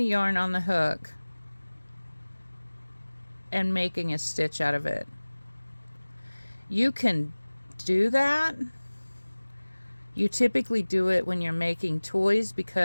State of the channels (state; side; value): inverted; both; correlation -1.00